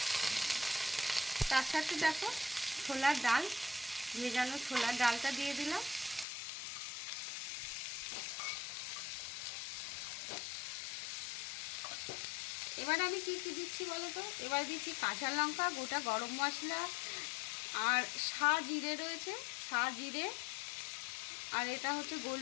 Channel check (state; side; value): drops out; right; at 6.2 s